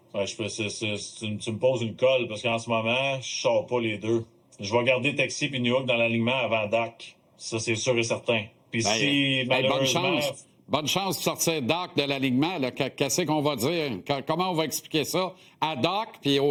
Ouais, tu me poses une colle parce qu'en ce moment, je sors pas les deux. Je vais garder Texier et Newhook dans l'alignement avant Dak. Ça, c'est sûr et certain. Puis si, malheureusement... Bonne chance de sortir Dak de l'alignement. Qu'est-ce qu'on va dire? Comment on va expliquer ça à Dak puis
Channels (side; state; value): both; identical; correlation 1.00